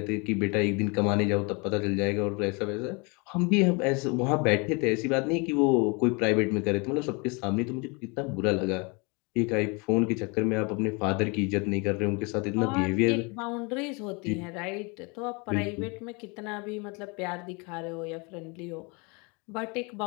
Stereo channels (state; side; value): quieter; right; 30.0 dB